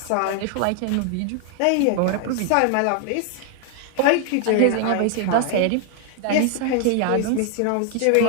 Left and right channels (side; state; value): both; different; correlation 0.00